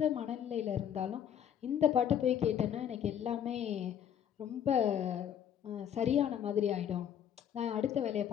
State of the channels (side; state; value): right; quieter; 9.3 dB